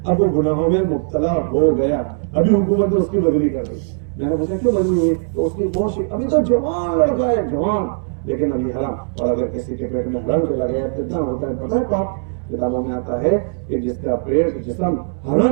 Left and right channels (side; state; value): left; silent; 66 dB below the other